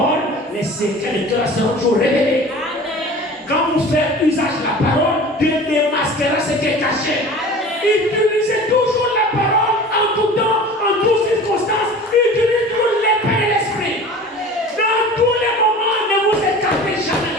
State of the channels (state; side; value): normal; both; correlation 0.40